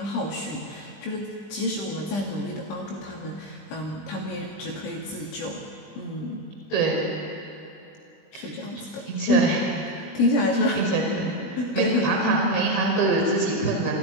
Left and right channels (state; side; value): late; right; 20 ms